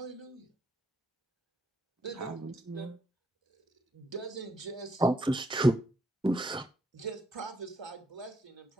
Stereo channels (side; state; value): both; normal; correlation 0.76